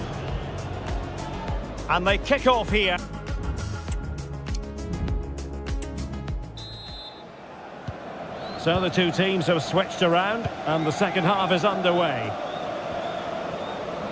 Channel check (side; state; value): both; identical; correlation 1.00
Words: And they kick off here. So the two teams have switched around, and the second half is underway.